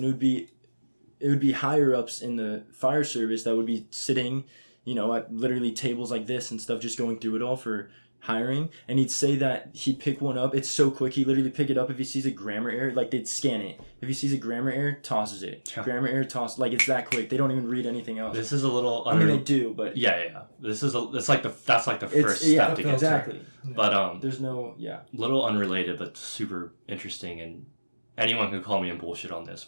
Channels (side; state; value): both; inverted; correlation -1.00